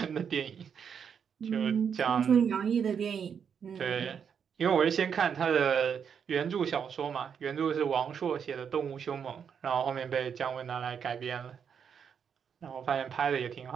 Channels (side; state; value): left; quieter; 7.3 dB